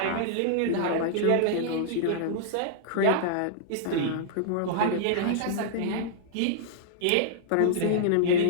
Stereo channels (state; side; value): different; both; correlation -0.02